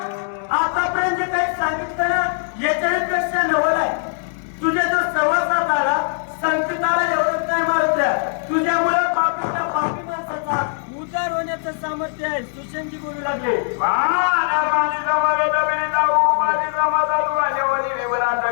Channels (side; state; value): right; silent; 59 dB below the other